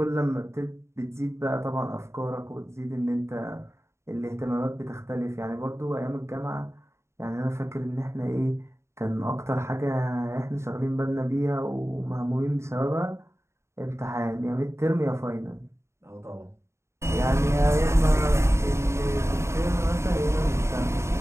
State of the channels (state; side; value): late; left; 0.13 ms